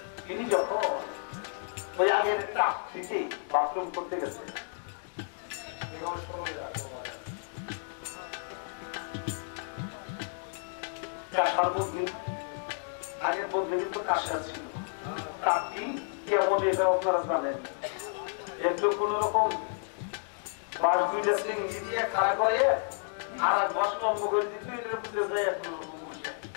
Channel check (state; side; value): silent; right; 57 dB below the other